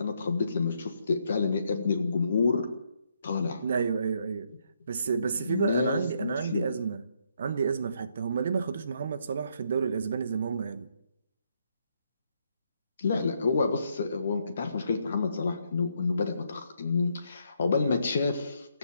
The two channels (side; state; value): both; inverted; correlation -0.74